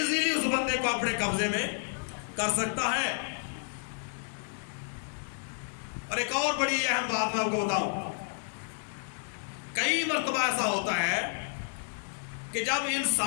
اس بندے کو اپنے قبضے میں کر سکتا ہے۔ اور ایک اور بڑی اہم بات میں آپ کو بتاؤں، کئی مرتبہ ایسا ہوتا ہے کہ جب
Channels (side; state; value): right; silent; digital silence